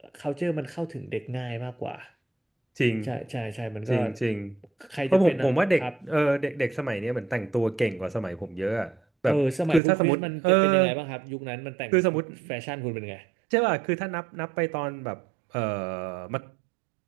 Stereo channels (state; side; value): drops out; left; at 9.8 s